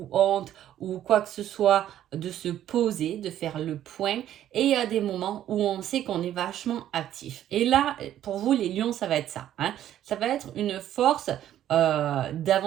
honte ou quoi que ce soit, de se poser, de faire le point. Et il y a des moments où on sait qu'on est vachement actif. Et là, pour vous, les lions, ça va être ça. Ça va être une force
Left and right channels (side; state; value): left; quieter; 11.6 dB